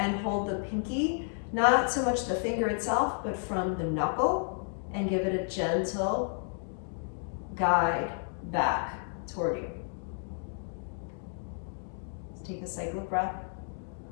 hold the pinky, not so much the finger itself, but from the knuckle, and give it a gentle guide back toward you. Let's take a cycle of breath.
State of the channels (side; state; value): right; silent; 57 dB below the other